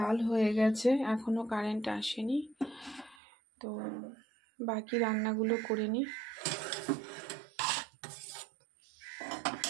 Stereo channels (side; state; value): left; drops out; at 3.2 s